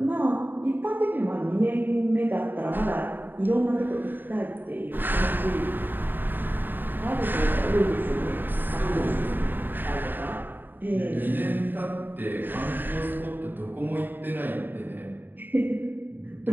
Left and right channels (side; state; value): left; late; 0.092 ms